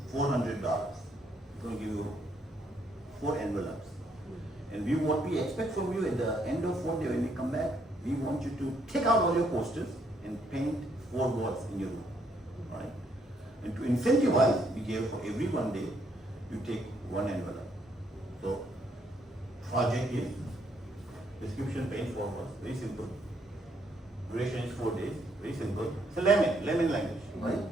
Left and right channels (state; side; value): normal; both; correlation 0.72